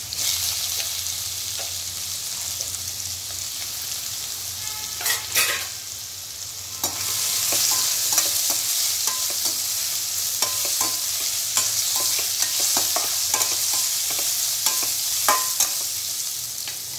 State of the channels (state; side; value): identical; both; correlation 1.00